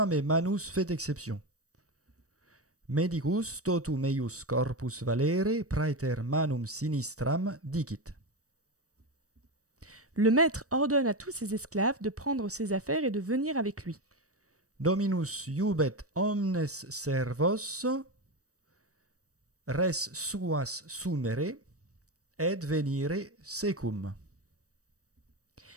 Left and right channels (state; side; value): late; left; 0.66 ms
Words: mais manus fait exception. Medicus totum eius corpus valere praeter manum sinistram dicit. Le maître ordonne à tous ses esclaves de prendre ses affaires et de venir avec lui. Dominus iubet omnes servos, res suas sumere, et venire secum.